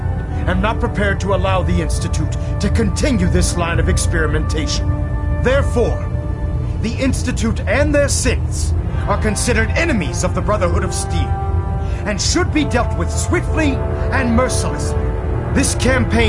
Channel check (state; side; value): identical; both; correlation 1.00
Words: am not prepared to allow the Institute to continue this line of experimentation. Therefore, the Institute and their synths are considered enemies of the Brotherhood of Steel, and should be dealt with swiftly and mercilessly. This